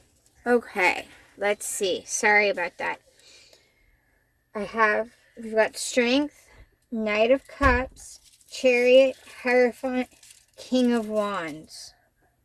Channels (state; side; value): identical; both; correlation 1.00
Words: Okay, let's see. Sorry about that. We've got Strength, Knight of Cups, Chariot, Hierophant, King of Wands.